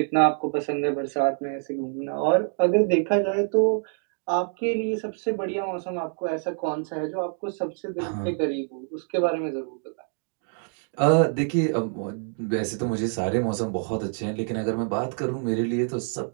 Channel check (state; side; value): silent; left; 56 dB below the other